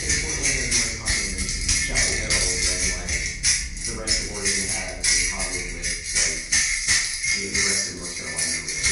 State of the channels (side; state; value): both; identical; correlation 1.00